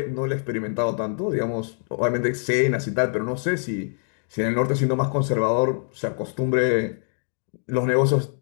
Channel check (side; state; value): right; silent; 62 dB below the other